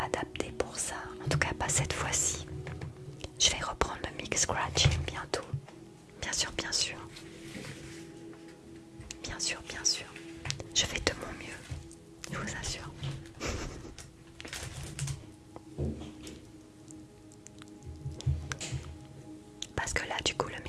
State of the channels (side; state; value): both; identical; correlation 1.00